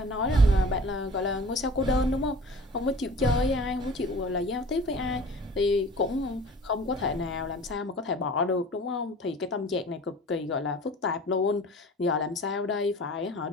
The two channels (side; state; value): both; normal; correlation 0.43